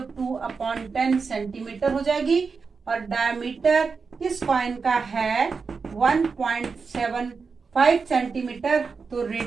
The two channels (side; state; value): left; quieter; 5.0 dB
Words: 2/10 सेंटीमीटर हो जाएगी और डायमीटर इस कॉइन का है 1.75 सेंटीमीटर, तो